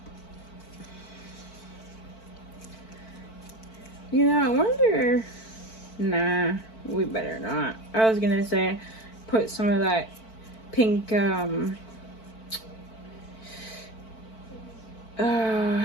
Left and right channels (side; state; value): right; late; 4.5 ms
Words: You know, I wonder... Nah, we better not. I was gonna say, put some of that pink,